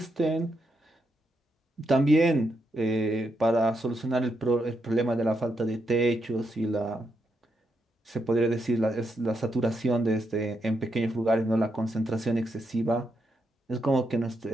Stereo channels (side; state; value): both; normal; correlation 0.81